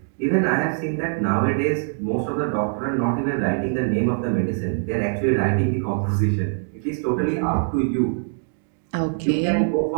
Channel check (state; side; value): silent; left; digital silence